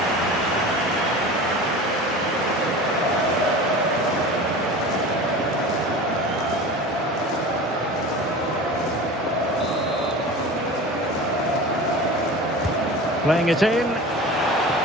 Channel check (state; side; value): normal; both; correlation 0.35